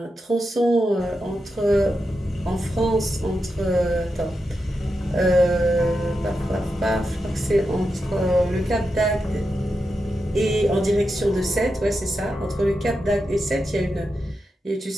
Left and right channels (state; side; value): normal; both; correlation 0.88